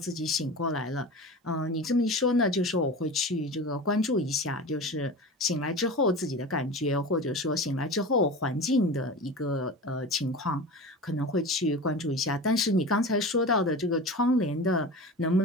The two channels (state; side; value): normal; both; correlation 0.31